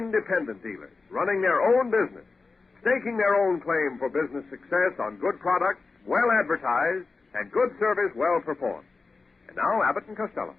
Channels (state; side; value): quieter; right; 4.1 dB